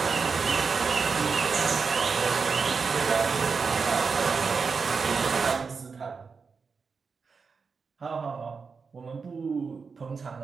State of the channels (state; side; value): quieter; left; 5.1 dB